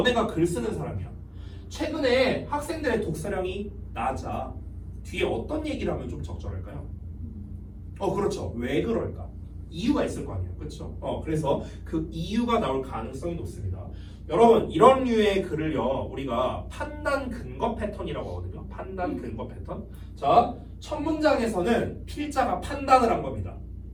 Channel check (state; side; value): identical; both; correlation 1.00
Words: 글 쓰는 사람이야. 최근에 학생들의 독서량이 낮아. 뒤에 어떤 얘기를 하면 좀 적절할까요? 그렇죠. 왜 그럴까? 이유가 있을 거 아니에요. 그렇죠? 그래서 그 이유가 나올 가능성이 높습니다. 여러분, 이런 류의 글을요, 우리가 판단 근거 패턴이라고 하거든요. 판단 근거 패턴. 자, 첫 문장에서는 필자가 판단을 한 겁니다.